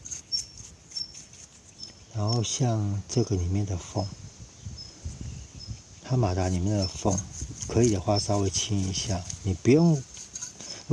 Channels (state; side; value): identical; both; correlation 1.00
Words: 然后像这个里面的缝，它马达里面的缝，可以的话稍微清一下。你不用，